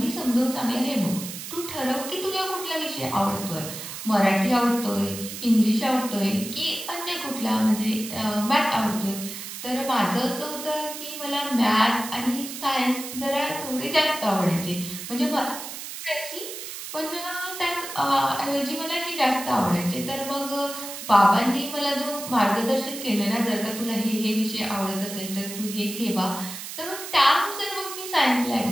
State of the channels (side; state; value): right; noise; hiss, 9 dB below the sound